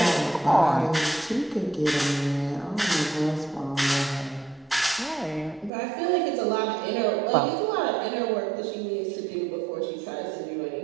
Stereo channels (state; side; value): drops out; left; at 5.7 s